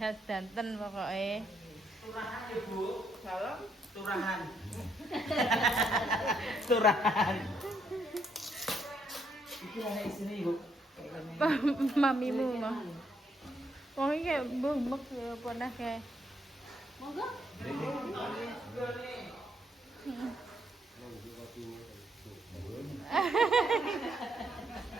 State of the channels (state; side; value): normal; both; correlation 0.74